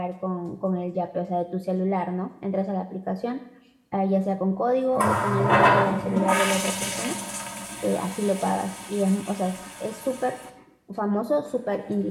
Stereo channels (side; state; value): both; identical; correlation 1.00